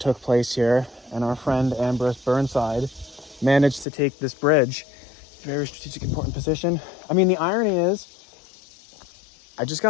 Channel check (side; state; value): right; drops out; at 3.9 s